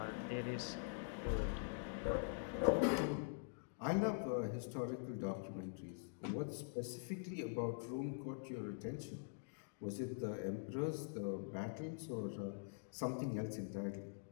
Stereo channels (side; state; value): right; silent; digital silence